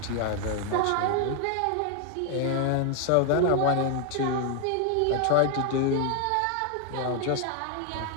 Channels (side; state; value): both; different; correlation 0.00